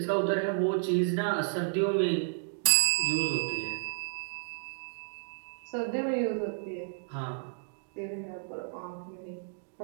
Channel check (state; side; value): silent; left; digital silence